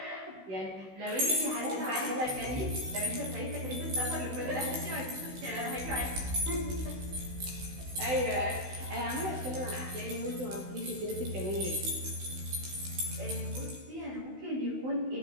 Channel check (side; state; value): left; late; 16 ms